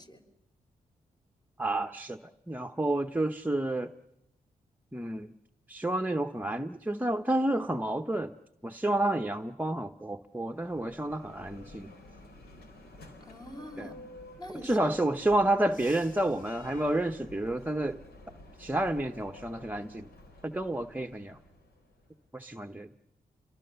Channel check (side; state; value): both; normal; correlation 0.86